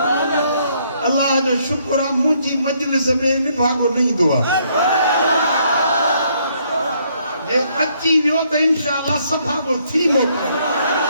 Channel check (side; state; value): both; inverted; correlation -0.69